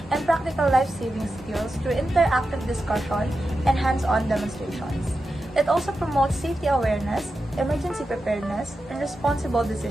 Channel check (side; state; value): both; normal; correlation 0.90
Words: and practical life-saving skills through interactive discussion and hands-on demonstrations. It also promotes safety awareness, emergency preparedness, and responsible